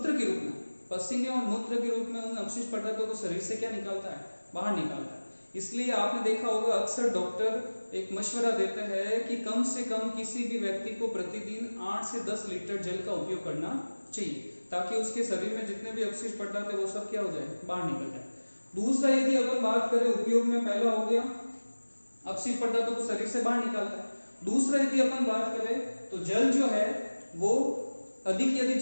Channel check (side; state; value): both; inverted; correlation -1.00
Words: के रूप में, पसीने और मूत्र के रूप में उन अवशिष्ट पदार्थों को शरीर से क्या निकालता है? बाहर निकालता है। इसलिए आपने देखा होगा अक्सर डॉक्टर एक मशवरा देते हैं कि कम से कम किसी भी व्यक्ति को प्रतिदिन 8 से 10 लीटर जल का उपयोग करना चाहिए, ताकि उसके शरीर में जितने भी अवशिष्ट पदार्थ है वो सब क्या हो जाए? बाहर निकल जाए। दूसरा, यदि अपन बात करें उपयोग में, पहला हो गया अवशिष्ट पदार्थों को शरीर से बाहर निकालता है। दूसरा, यदि अपन बात करें तो जल जो है वो अधिक यदि